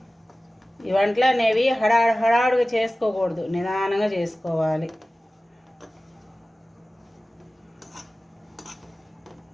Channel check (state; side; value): normal; both; correlation 0.96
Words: ఈ వంటలు అనేవి హడాడుగా చేసుకోకూడదు, నిదానంగా చేసుకోవాలి.